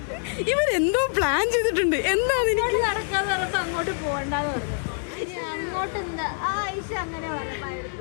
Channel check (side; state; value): right; silent; 61 dB below the other